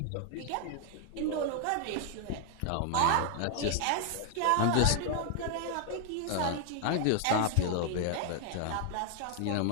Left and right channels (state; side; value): different; both; correlation 0.00